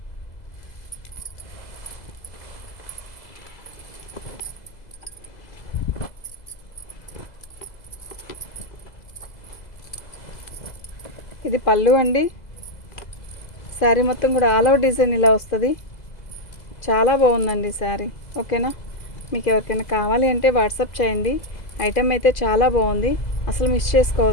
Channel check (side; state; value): right; late; 2.0 ms